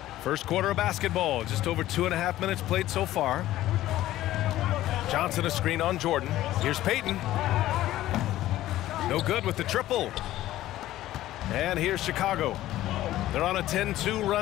First quarter of basketball, just over 2.5 minutes played so far. Johnson a screen on Jordan. Here's Payton. No good with the triple. And here's Chicago. They're on a 10-2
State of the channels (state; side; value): quieter; right; 14.6 dB